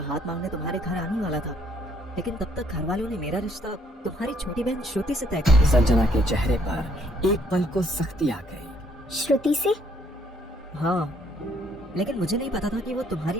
मांगने तुम्हारे घर आने वाला था, लेकिन तब तक घर वालों ने मेरा रिश्ता तुम्हारी छोटी बहन श्रुति से तय कर दिया। संजना के चेहरे पर एक पल को सख्ती आ गई। श्रुति से? हाँ, लेकिन मुझे नहीं पता था कि वो तुम्हारी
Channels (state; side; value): normal; both; correlation 0.66